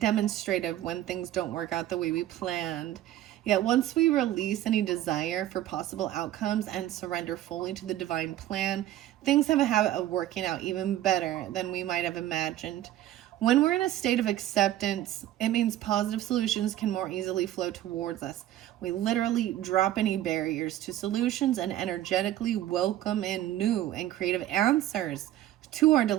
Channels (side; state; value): left; quieter; 13.2 dB